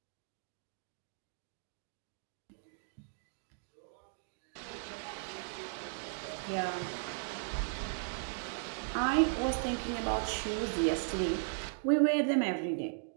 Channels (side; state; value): left; silent; digital silence